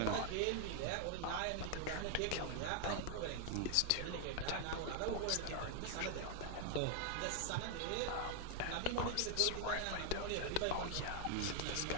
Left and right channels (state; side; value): different; both; correlation 0.00